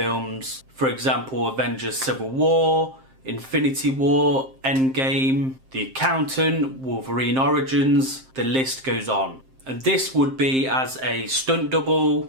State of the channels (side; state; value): left; late; 7.6 ms